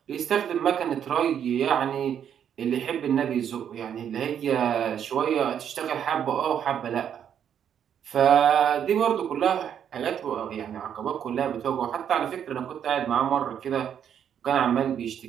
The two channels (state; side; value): quieter; left; 8.9 dB